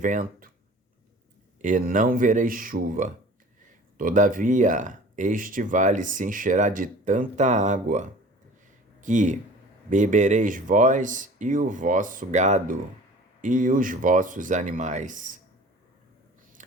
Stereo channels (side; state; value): both; normal; correlation 0.45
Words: e não vereis chuva. Todavia, este vale se encherá de tanta água que bebereis vós e o vosso gado e os vossos animais.